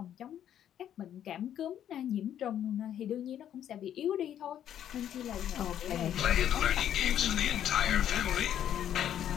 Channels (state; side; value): quieter; right; 10.4 dB